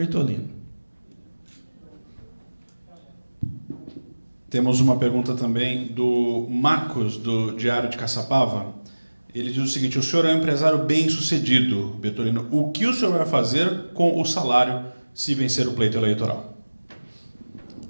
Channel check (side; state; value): both; inverted; correlation -1.00